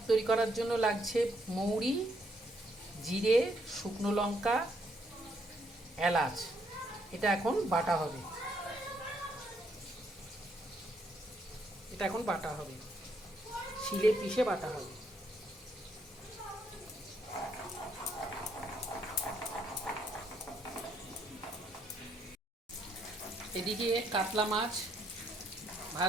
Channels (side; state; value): both; normal; correlation 0.72